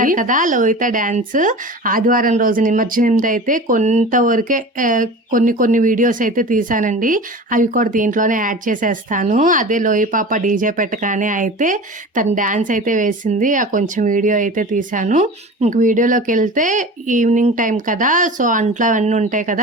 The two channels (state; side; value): normal; both; correlation 0.35